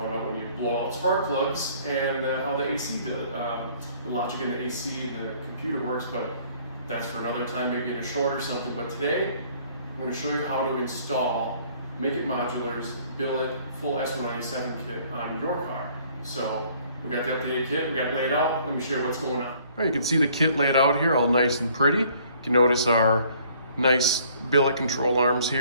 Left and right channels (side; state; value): both; inverted; correlation -0.58